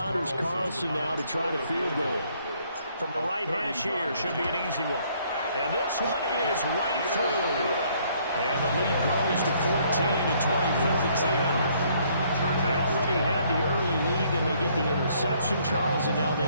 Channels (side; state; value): both; inverted; correlation -0.65